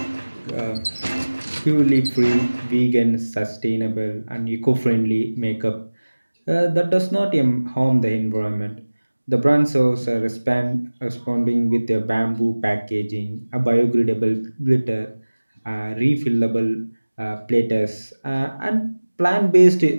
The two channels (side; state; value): both; inverted; correlation -1.00